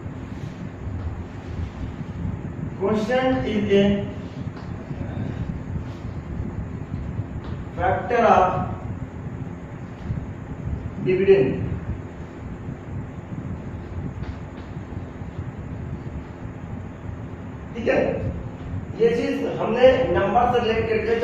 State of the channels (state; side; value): identical; both; correlation 1.00